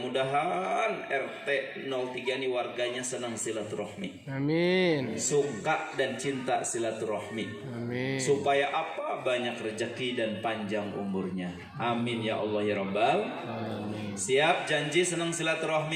RT 03 ini warganya senang silaturahmi. Amin. Suka dan cinta silaturahmi. Amin. Supaya apa? Banyak rezeki dan panjang umurnya. Amin ya Allah ya Rabbal. Amin. Siap janji senang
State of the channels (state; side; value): identical; both; correlation 1.00